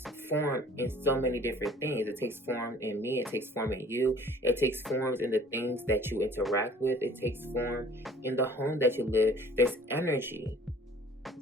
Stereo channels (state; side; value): normal; both; correlation 0.51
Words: form in so many different things. It takes form in me, it takes form in you, it takes forms in the things that you interact with, it takes form in the home that you live. There's energy,